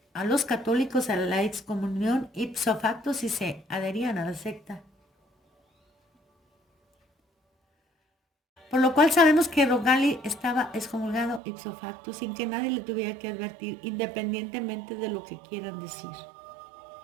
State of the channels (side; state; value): left; drops out; at 11.4 s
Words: a los católicos a la excomunión ipso facto si se adherían a la secta. Por lo cual sabemos que Roncalli estaba excomulgado ipso facto sin que nadie le tuviera que advertir, independientemente de lo que quieran decir.